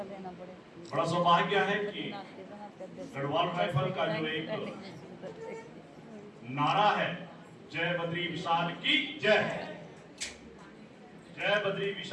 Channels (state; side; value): identical; both; correlation 1.00